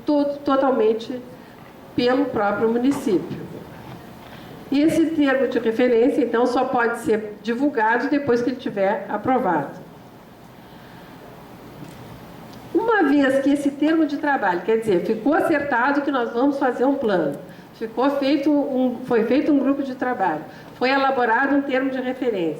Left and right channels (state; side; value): identical; both; correlation 1.00